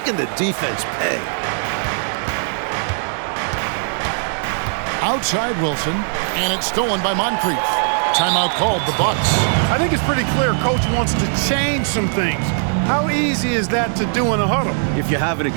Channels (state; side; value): silent; left; digital silence